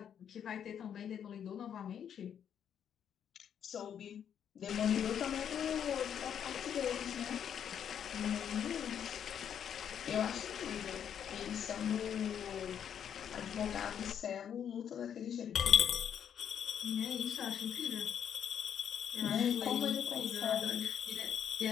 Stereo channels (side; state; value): right; quieter; 8.7 dB